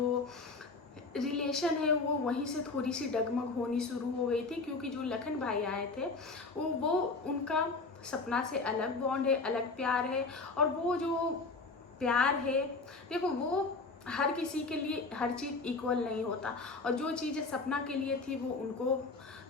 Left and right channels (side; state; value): right; quieter; 3.8 dB